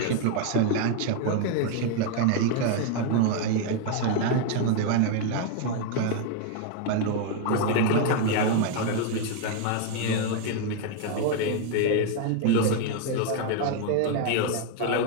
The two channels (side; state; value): both; different; correlation 0.01